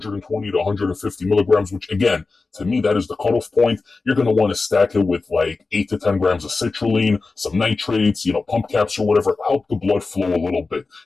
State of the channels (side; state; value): right; quieter; 3.9 dB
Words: to 150 milligrams, which again, to me, that is the cutoff point, you're going to want to stack it with like 8 to 10 grams of citrulline, some nitrates, pump caps or whatever, help the blood flow a little bit.